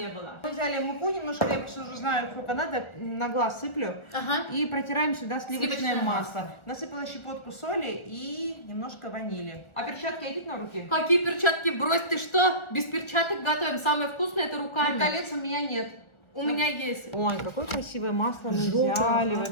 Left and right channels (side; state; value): right; late; 1.4 ms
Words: было. Мы взяли муку немножко, я просто уже знаю, сколько надо, на глаз сыплю. Ага. И протираем сюда сливочное Сливочное масло. Насыпала щепотку соли и немножко ванили. А перчатка идет на руки? Какие перчатки? Брось, ты что? Без перчаток готовим. Самое вкусное это Ну, руками. колец у меня нет. У меня есть. Ой, какое красивое масло мы Желтое, взяли ага.